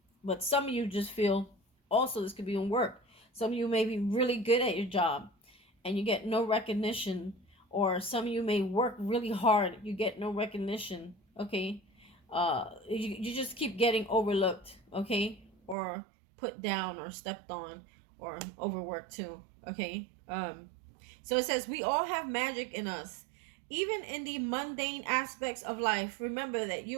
But some of you just feel, also this could be in work. Some of you may be really good at your job and you get no recognition, or some of you may work really hard, you get no recognition, okay? You just keep getting overlooked, okay? Or put down or stepped on or overworked too, okay? So it says, we all have magic in us. Even in the mundane aspects of life, remember that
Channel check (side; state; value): left; drops out; at 15.8 s